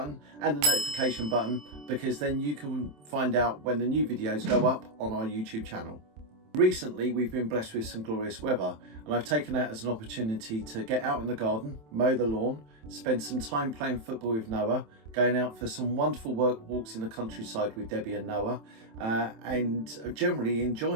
and the notification button, because then you can find out when the new videos go up on our YouTube channel. Recently, we've been blessed with some glorious weather, and I've taken that as an opportunity to get out in the garden, mow the lawn, spend some time playing football with Noah, going out for some wonderful walks in the countryside with Debbie and Noah, and generally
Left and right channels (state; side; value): late; left; 27 ms